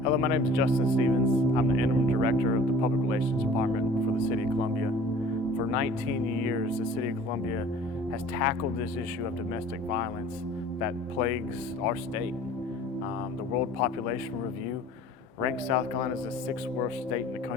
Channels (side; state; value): both; normal; correlation 0.47